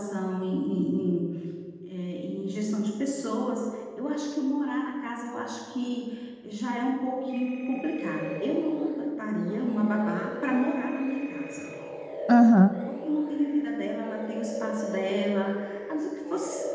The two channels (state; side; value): identical; both; correlation 1.00